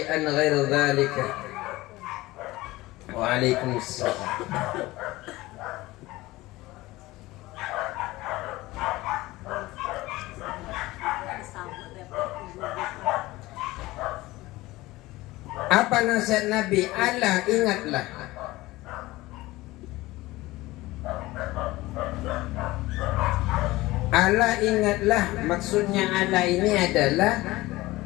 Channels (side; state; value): right; quieter; 19.1 dB